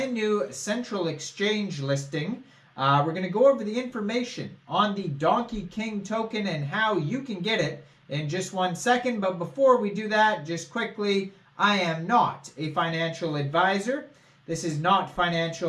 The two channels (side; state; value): both; identical; correlation 1.00